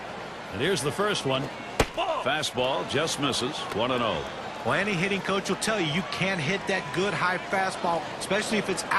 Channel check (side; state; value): both; identical; correlation 1.00